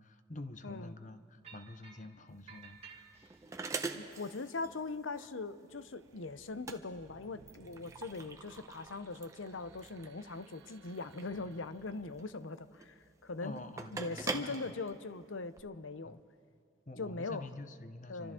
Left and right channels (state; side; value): normal; both; correlation 0.03